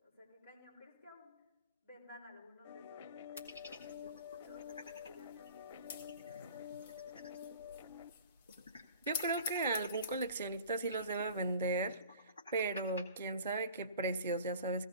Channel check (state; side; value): inverted; both; correlation -0.44